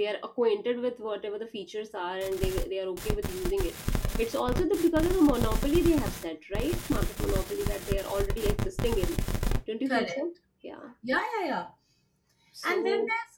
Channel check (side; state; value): both; identical; correlation 1.00